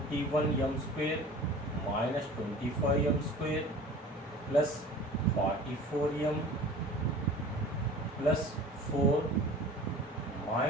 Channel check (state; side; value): normal; both; correlation 0.42